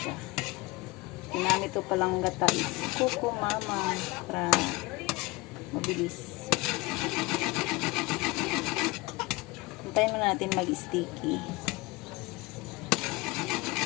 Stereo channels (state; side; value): quieter; right; 23.0 dB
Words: Ginamit ko palang gata is kuko mama para mabilis. Hintayin muna natin mag-sticky.